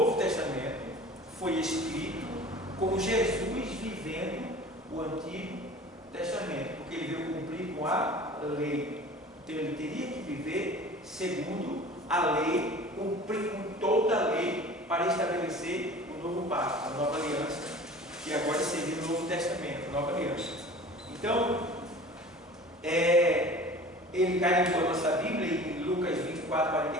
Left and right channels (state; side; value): normal; both; correlation 0.42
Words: Testamento foi escrito com Jesus vivendo o Antigo Testamento, porque ele veio cumprir com a lei. Então ele teria que viver segundo a lei, cumprir com toda a lei para estabelecer o novo pacto, a nova aliança, que agora seria o Novo Testamento, a nova aliança. Então, ele carimbou a nossa Bíblia em Lucas 24,